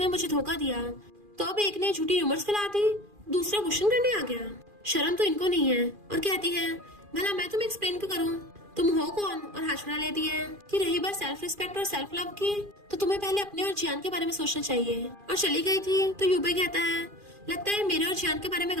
मुझे धोखा दिया, तो अब एक ने झूठी र्यूमर्स फैला दी, दूसरा क्वेश्चन करने आ गया, शर्म तो इनको नहीं है। और कहती है भला मैं तुम्हें एक्सप्लेन क्यों करूँ, तुम हो कौन, और हाथ छुड़ा लेती है कि रही बात सेल्फ रिस्पेक्ट और सेल्फ लव की तो तुम्हें पहले अपने और जियान के बारे में सोचना चाहिए। और चली गई थी। तो युबाई कहता है लगता है मेरे और जियान के बारे में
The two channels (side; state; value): left; late; 2.4 ms